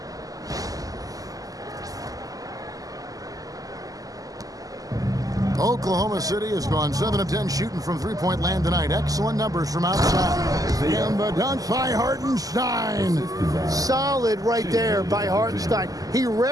Oklahoma City has gone 7 of 10 shooting from three-point land tonight. Excellent numbers from outside. And the dunk by Hartenstein. Solid right there by Hartenstein. He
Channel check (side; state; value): left; late; 0.17 ms